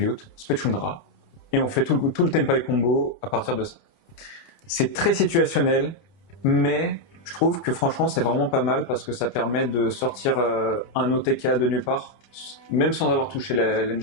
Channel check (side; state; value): right; late; 29 ms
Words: on se fait Chundra, et on fait tout le Tenpai combo à partir de ça. C'est très situationnel, mais je trouve que franchement c'est vraiment pas mal parce que ça permet de sortir un OTK de nulle part, même sans avoir touché